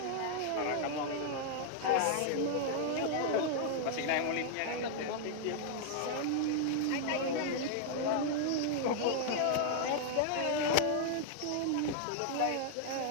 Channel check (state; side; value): different; both; correlation -0.01